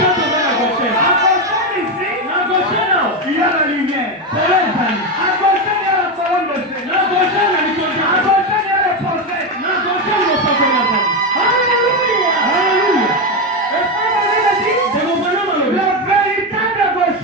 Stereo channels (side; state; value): both; normal; correlation 0.11